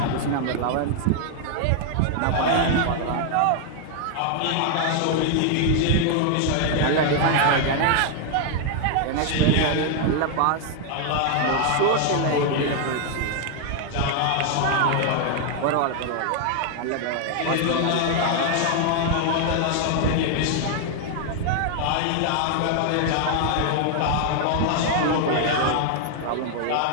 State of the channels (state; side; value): different; both; correlation 0.00